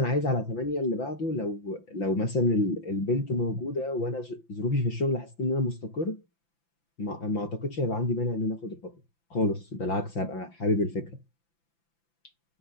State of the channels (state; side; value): late; right; 5.9 ms